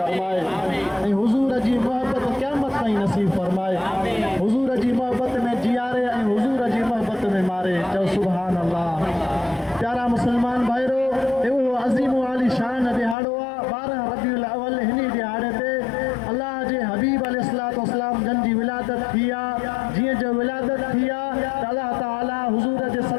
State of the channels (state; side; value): drops out; right; at 13.2 s